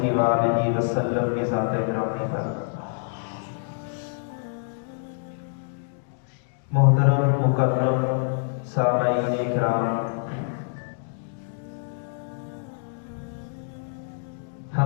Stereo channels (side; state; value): right; silent; digital silence